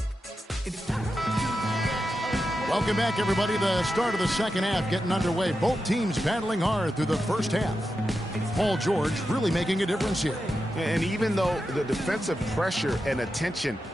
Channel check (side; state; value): both; normal; correlation 0.89